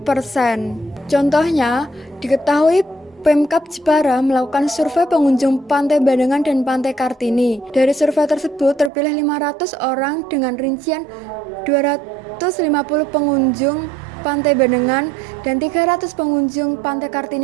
persen. Contohnya, diketahui Pemkab Jepara melakukan survei pengunjung Pantai Bandengan dan Pantai Kartini. Dari survei tersebut terpilih 500 orang dengan rincian 250 pengunjung Pantai Bandengan dan 300 pengunjung Pantai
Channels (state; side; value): drops out; left; at 8.9 s